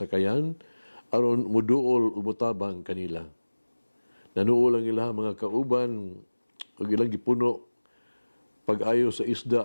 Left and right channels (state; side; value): inverted; both; correlation -1.00